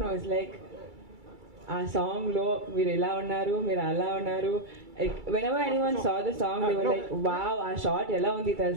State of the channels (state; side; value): late; left; 2.3 ms